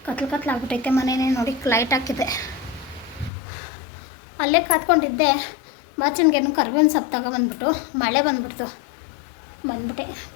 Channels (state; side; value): drops out; right; at 3.3 s